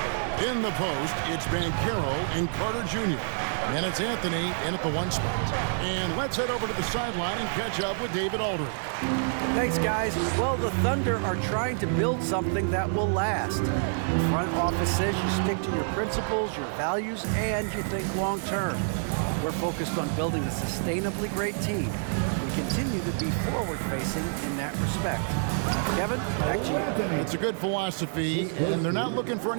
In the post, it's Banchero and Carter Jr. And it's Anthony in at the 1 spot. And let's head over to the sideline and catch up with David Aldridge. Thanks, guys. Well, the Thunder are trying to build something that will last. The front office says you stick to your principles, your values, and you think long term. We're focused on building a sustainably great team. We continue to be forward-facing in that respect. Kevin, back to you. It's a good philosophy, and they're not looking for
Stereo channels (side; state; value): left; silent; digital silence